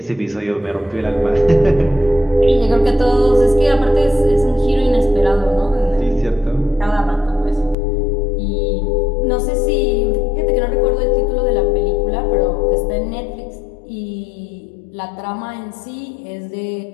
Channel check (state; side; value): drops out; right; at 7.8 s